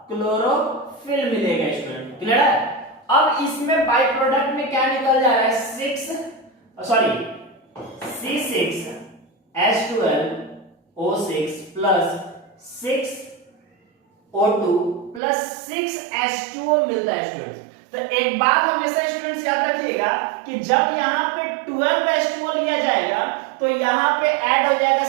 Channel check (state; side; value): drops out; left; at 15.2 s